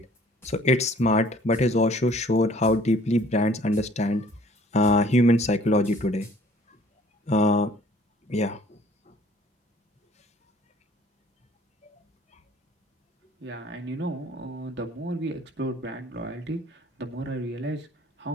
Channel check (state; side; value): normal; both; correlation 0.55